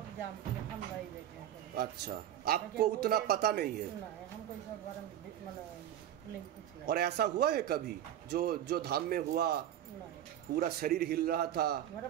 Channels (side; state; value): left; quieter; 11.2 dB